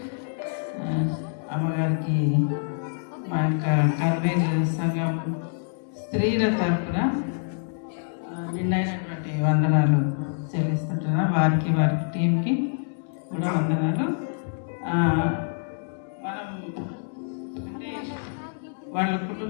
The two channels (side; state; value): right; silent; digital silence